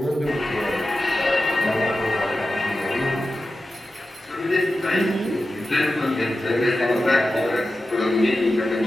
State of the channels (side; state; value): both; normal; correlation 0.93